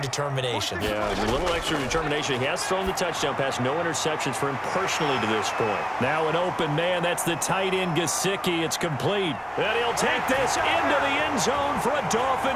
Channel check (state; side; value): identical; both; correlation 1.00